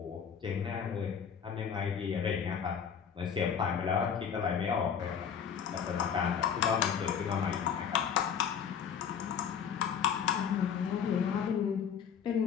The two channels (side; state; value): right; quieter; 7.6 dB